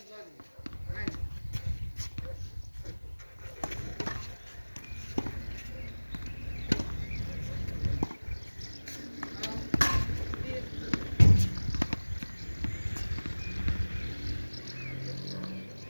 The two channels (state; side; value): inverted; both; correlation -1.00